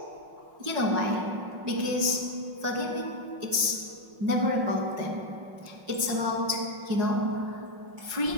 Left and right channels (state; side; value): late; left; 5.5 ms